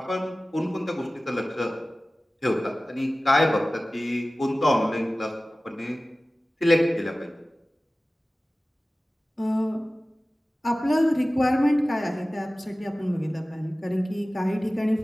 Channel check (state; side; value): normal; both; correlation 0.97